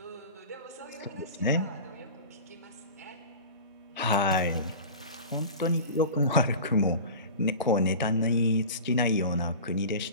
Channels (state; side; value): inverted; both; correlation -0.35